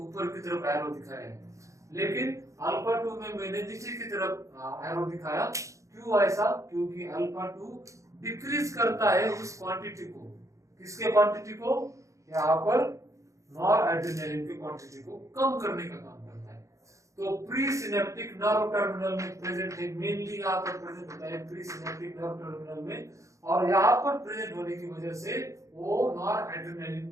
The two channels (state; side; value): late; left; 0.15 ms